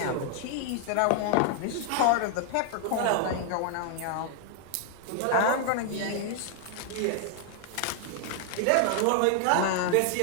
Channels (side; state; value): both; different; correlation 0.00